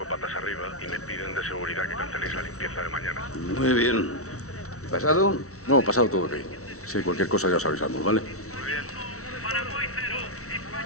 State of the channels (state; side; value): late; right; 0.64 ms